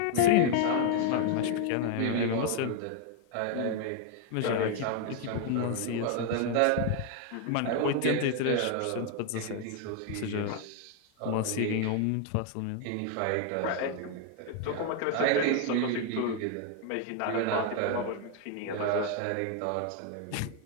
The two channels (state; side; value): different; both; correlation 0.00